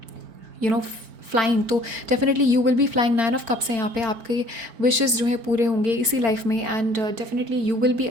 flying. तो definitely you will be flying. 9 of cups हैं यहाँ पे, आपके विशेज़ जो है पूरे होंगे इसी लाइफ में, and definitely you will be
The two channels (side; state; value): left; late; 4.4 ms